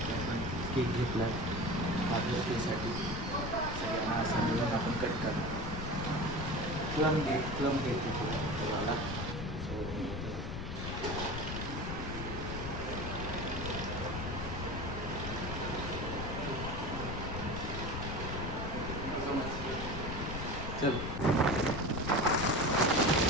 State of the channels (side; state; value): left; noise; rumble, 5 dB below the sound